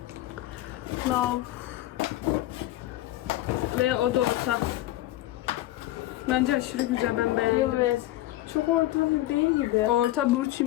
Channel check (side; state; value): right; quieter; 15.7 dB